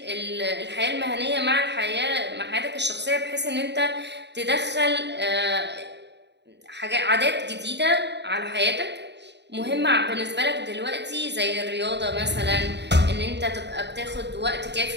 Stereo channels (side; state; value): left; late; 0.50 ms